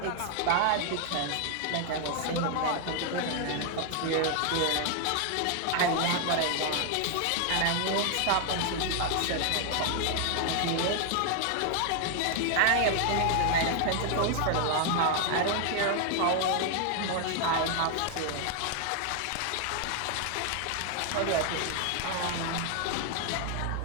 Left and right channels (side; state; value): both; different; correlation 0.00